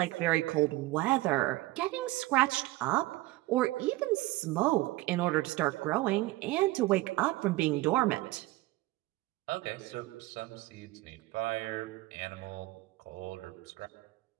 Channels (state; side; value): quieter; left; 18.9 dB